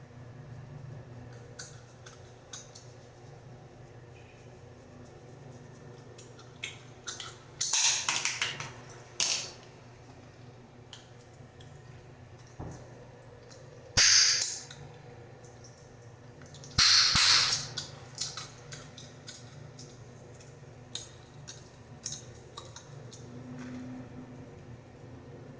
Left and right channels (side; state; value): both; identical; correlation 1.00